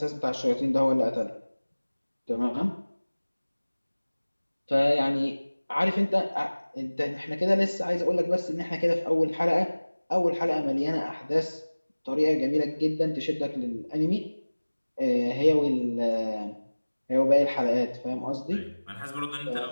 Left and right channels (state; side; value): inverted; both; correlation -1.00